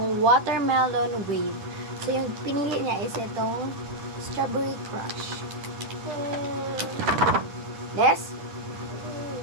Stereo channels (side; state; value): left; late; 10 ms